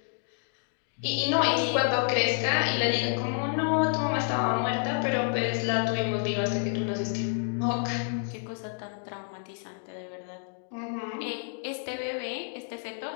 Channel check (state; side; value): silent; right; 58 dB below the other